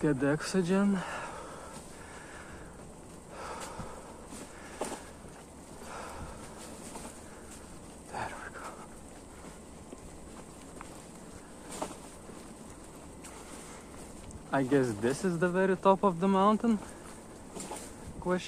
the oxygen. There we go. I guess this is the very top of the mountain?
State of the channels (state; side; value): identical; both; correlation 1.00